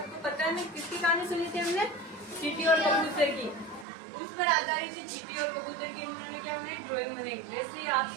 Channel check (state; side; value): drops out; left; at 3.9 s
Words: पता है ना किसकी कहानी सुनी थी हमने? चींटी और कबूतर की। उस पर आधारित थी चींटी और कबूतर की। उन्होंने क्या बनाई? ड्राइंग बनाई। वैसे ही आप